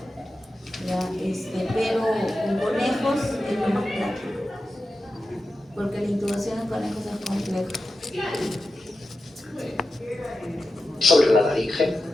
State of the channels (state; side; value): normal; both; correlation 0.92